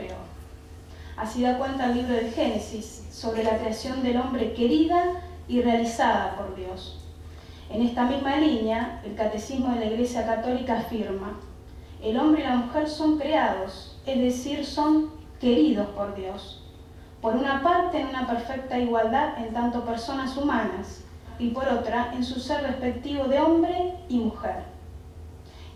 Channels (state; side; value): identical; both; correlation 1.00